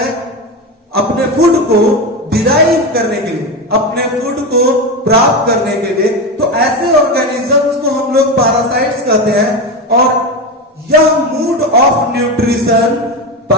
अपने फूड को डिराइव करने के लिए, अपने फूड को प्राप्त करने के लिए, तो ऐसे ऑर्गेनिजम्स को हम लोग पैरासाइट्स कहते हैं। और यह mood off nutrition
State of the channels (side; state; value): both; normal; correlation 0.18